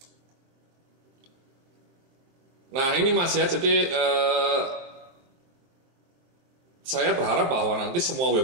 Nah ini Mas ya, jadi saya berharap bahwa nanti semua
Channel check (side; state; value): left; late; 23 ms